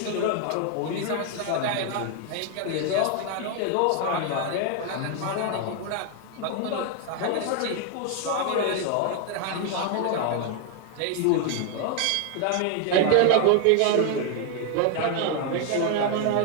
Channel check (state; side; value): different; both; correlation 0.01